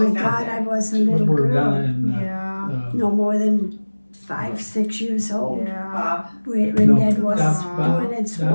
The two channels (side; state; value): both; inverted; correlation -1.00